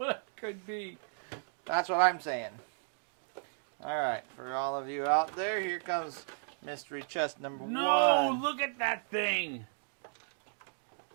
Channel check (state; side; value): silent; left; digital silence